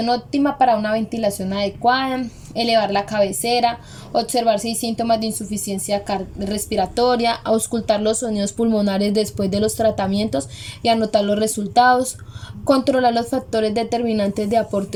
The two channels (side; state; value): both; identical; correlation 1.00